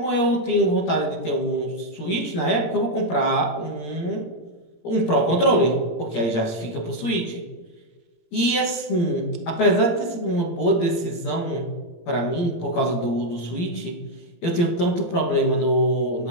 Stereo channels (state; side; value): late; right; 18 ms